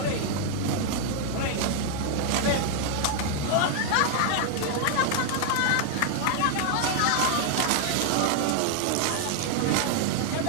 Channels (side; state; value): both; different; correlation 0.00